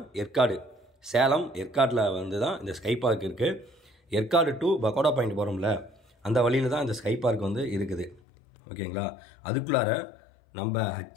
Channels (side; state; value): right; drops out; at 8.2 s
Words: ஏற்காடு, சேலம் ஏற்காடில் வந்து தான் இந்த ஸ்கை பார்க் இருக்குது. ஏற்காடு டு பக்கோடா பாயிண்ட் போகிறோம்ல, அந்த வழியில் தான் இந்த ஸ்கை பார்க் வந்து இருக்குது. ஓகேங்களா? அதுக்குள்ளார நம்ம